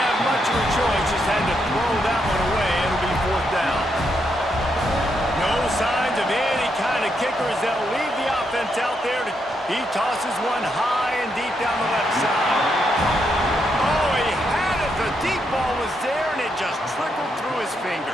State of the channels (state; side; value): normal; both; correlation 0.80